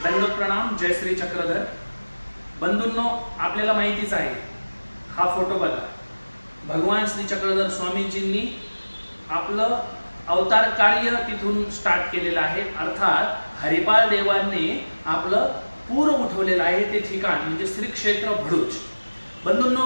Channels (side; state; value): both; inverted; correlation -1.00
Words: दंड प्रणाम. जय श्री चक्रधर. बंधूंनो, आपल्याला माहितीच आहे, हा फोटो बघा. भगवान श्री चक्रधर स्वामीजींनी आपलं अवतार कार्य तिथून स्टार्ट केलेलं आहे. अर्थात हरिपाल देवांनी आपलं पूर उठवलेलं आहे ते ठिकाण म्हणजे श्री क्षेत्र भरूच.